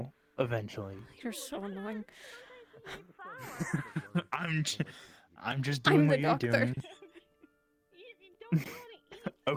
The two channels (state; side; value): identical; both; correlation 1.00